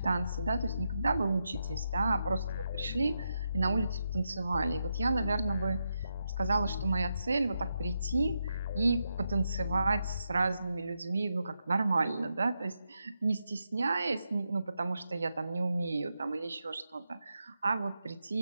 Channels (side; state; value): both; inverted; correlation -0.84